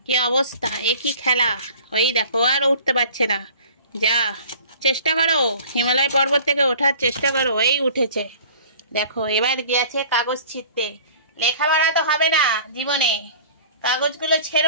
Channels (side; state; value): both; inverted; correlation -0.46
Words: কি অবস্থা, একই খেলা। ওই দেখো আর উঠতে পারছে না। যা চেষ্টা করো, হিমালয় পর্বত থেকে ওঠার চেষ্টা করো। এই উঠেছে, দেখো এবার গিয়েছে কাগজ ছিঁড়তে। লেখাপড়া তো হবে না জীবনে, কাগজগুলো